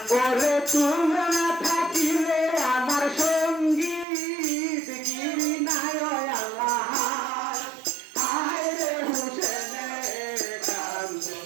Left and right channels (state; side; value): drops out; left; at 4.0 s